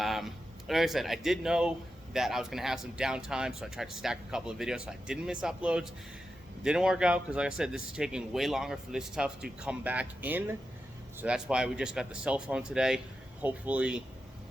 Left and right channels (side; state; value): both; normal; correlation 0.89